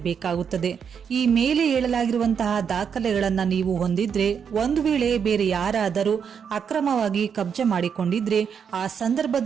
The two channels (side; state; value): left; quieter; 7.1 dB